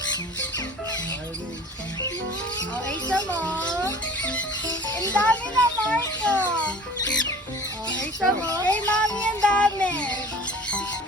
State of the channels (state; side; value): normal; both; correlation 0.44